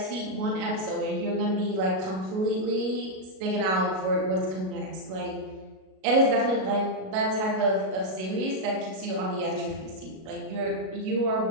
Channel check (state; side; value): late; left; 37 ms